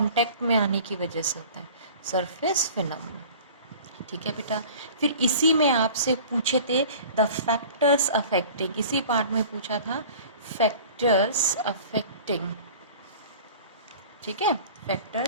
में आने की वजह से होता है, सरफेस फिनोमिना। ठीक है बेटा, फिर इसी में आपसे पूछे थे द फैक्टर्स अफेक्टिंग, इसी पार्ट में पूछा था फैक्टर्स अफेक्टिंग। ठीक है,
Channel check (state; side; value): inverted; both; correlation -0.43